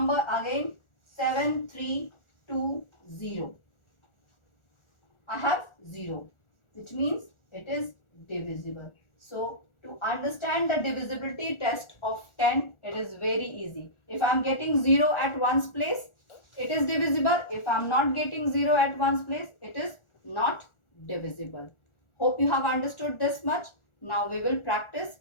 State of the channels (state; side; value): late; right; 1.4 ms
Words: again 7, 3, 2, 0. I have 0, which means it is divisible. So to understand the divisibility test of 10, it is very easy. If I am getting 0 at one's place, it is divisible. If I am not getting 0 at one's place, it is not divisible. Hope you have understood this much. Now we will practice